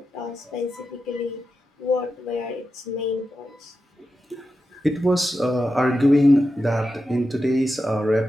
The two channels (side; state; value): both; normal; correlation 0.90